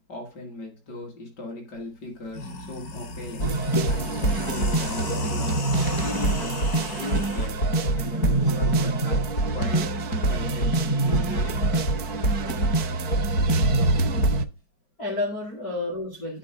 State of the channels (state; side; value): late; right; 4.6 ms